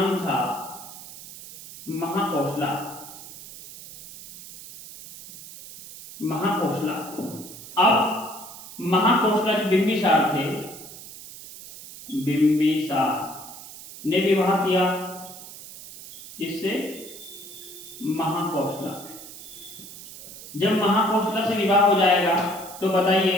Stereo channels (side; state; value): right; noise; hiss, 15 dB below the sound